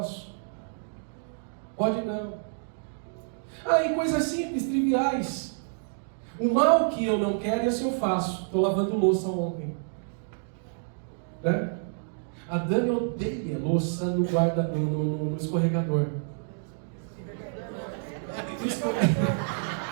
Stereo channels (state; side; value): silent; left; digital silence